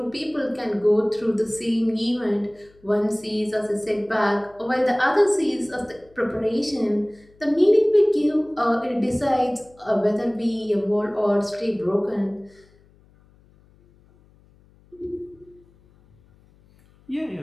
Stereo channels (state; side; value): noise; left; hum, 30 dB below the sound